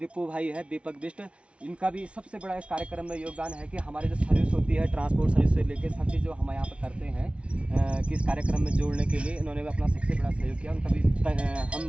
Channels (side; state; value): left; late; 0.060 ms